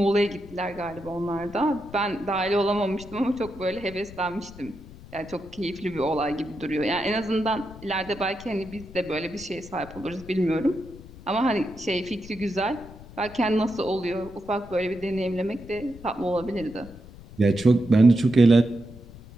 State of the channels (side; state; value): left; noise; rumble, 18 dB below the sound